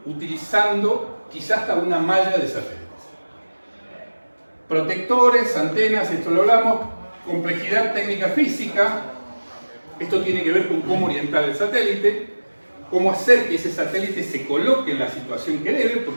utilizando quizás hasta una malla de satélites. Protectores, antenas, esto lo hablamos, complejidad técnica física, esto tiene que ver con cómo orientar el satélite, cómo hacer que ese satélite se coloque en la situación que debe,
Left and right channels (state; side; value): inverted; both; correlation -1.00